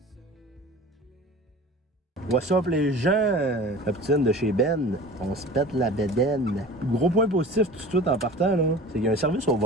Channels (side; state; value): both; normal; correlation 0.39